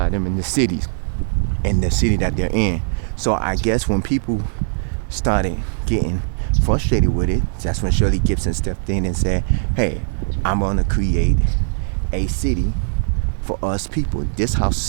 them in the cities and the city that they're in. So I guess when people started getting frustrated with it, that's when Shirley Gibson stepped in and said, hey, I'm gonna create a city for us people. This house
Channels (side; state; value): left; silent; digital silence